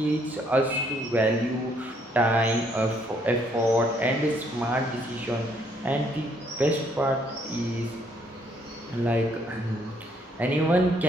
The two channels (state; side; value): normal; both; correlation 0.68